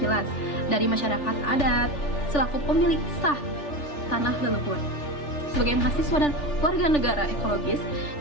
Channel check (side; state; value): right; late; 3.4 ms